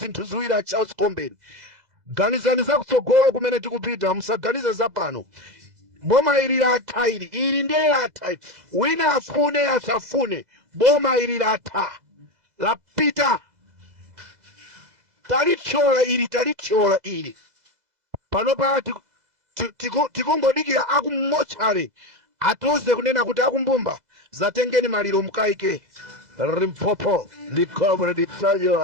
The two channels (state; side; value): late; left; 2.0 ms